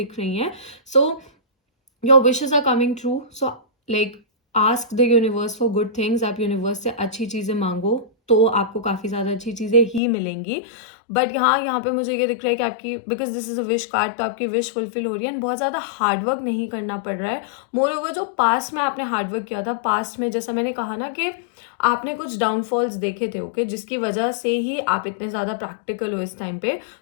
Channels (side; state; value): right; drops out; at 10.0 s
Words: रही हैं. Your wishes are coming true. Like ask the universe for good things. आप यूनिवर्स से अच्छी चीज़ें मांगो तो आपको काफ़ी ज़्यादा अच्छी चीज़ें ही मिलेंगी. बट यहाँ पे मुझे ये दिख रहा है कि आपकी, because this is a wish card, तो आपकी विश फुलफिल हो रही है एंड बहुत ज़्यादा हार्डवर्क नहीं करना पड़ रहा है. मोर ओवर जो पास्ट में आपने हार्डवर्क किया था, पास्ट में जैसा मैंने कहा ना कि आपने कुछ डाउनफॉल्स देखे थे. ओके, जिसकी वजह से ही आप इतने ज़्यादा प्रैक्टिकल हो इस टाइम पे,